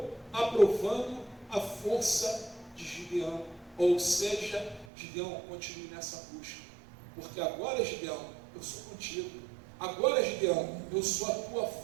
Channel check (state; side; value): drops out; left; at 4.9 s